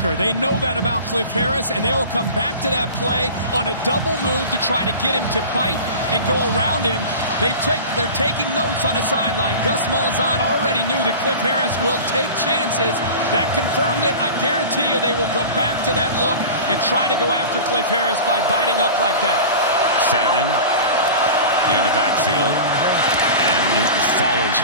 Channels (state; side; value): inverted; both; correlation -0.34